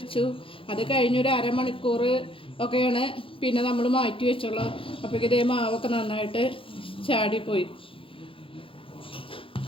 അത് കഴിഞ്ഞൊരു 1/2 മണിക്കൂർ ഒക്കെയാണ് പിന്നെ നമ്മൾ മാറ്റി വെച്ചുള്ളൂ. അപ്പോഴേക്കും ഇതേ മാവൊക്കെ നന്നായിട്ട് ചാടിപ്പോയി.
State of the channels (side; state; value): right; late; 0.26 ms